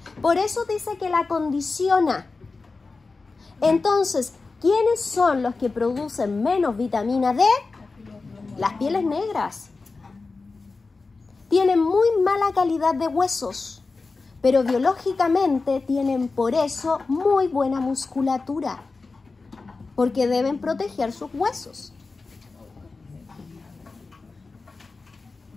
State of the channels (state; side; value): quieter; right; 3.9 dB